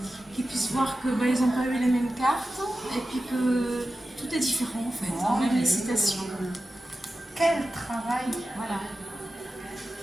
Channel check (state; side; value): normal; both; correlation 0.93